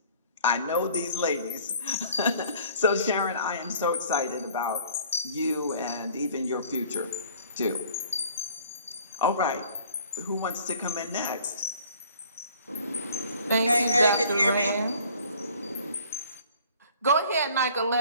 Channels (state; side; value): inverted; both; correlation -0.53